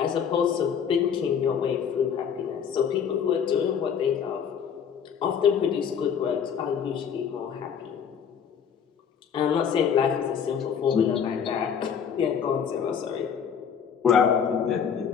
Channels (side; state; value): right; quieter; 7.5 dB